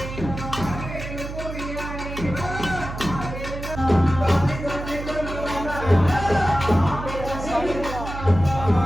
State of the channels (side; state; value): right; noise; hum, 8 dB below the sound